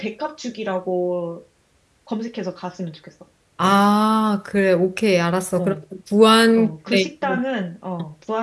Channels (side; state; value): both; identical; correlation 1.00